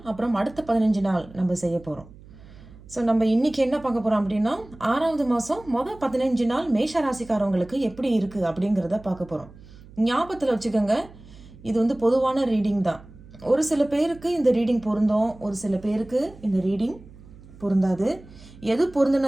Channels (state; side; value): noise; right; hum, 21 dB below the sound